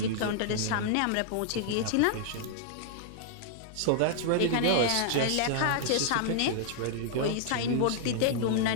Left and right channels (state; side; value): different; both; correlation -0.01